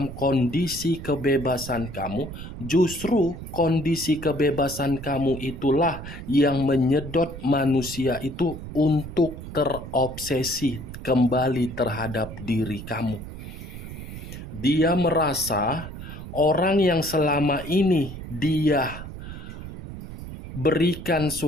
kondisi kebebasan kamu, justru kondisi kebebasan kamu itulah yang menyedot manusia itu untuk terobsesi kembali terhadap diri kamu. Dia merasa orang yang selama ini dia berikan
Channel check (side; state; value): right; noise; rumble, 11 dB below the sound